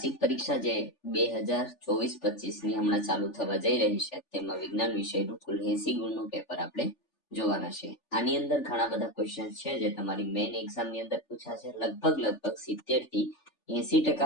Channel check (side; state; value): right; late; 3.4 ms